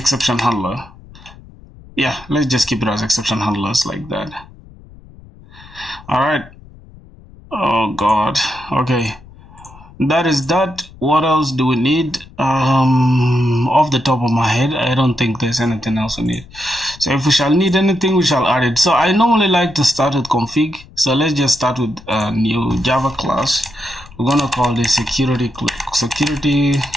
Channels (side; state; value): left; noise; rumble, 21 dB below the sound